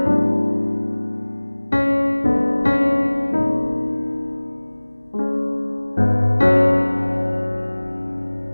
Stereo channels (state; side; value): inverted; both; correlation -1.00